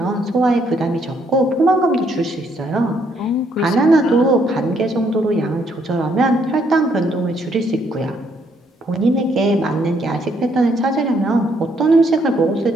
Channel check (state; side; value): normal; both; correlation 0.71